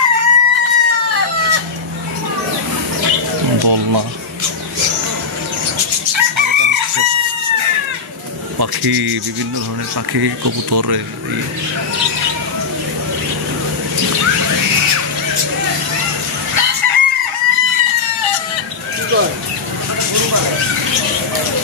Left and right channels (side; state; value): right; quieter; 4.9 dB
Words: দোলনা, পাখি, বিভিন্ন ধরনের পাখি, কবুতর।